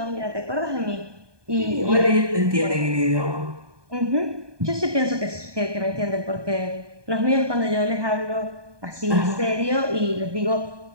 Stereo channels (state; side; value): late; left; 1.2 ms